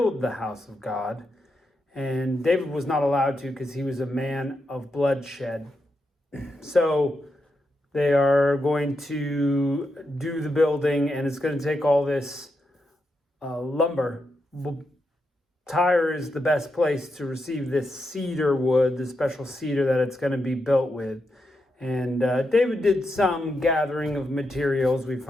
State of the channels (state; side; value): normal; both; correlation 0.85